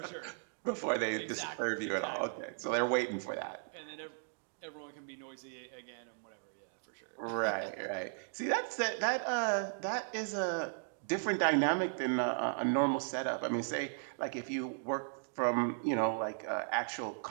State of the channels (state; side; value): silent; left; digital silence